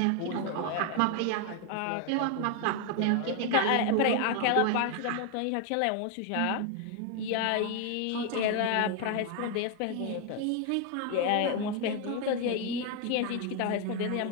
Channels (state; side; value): different; both; correlation 0.01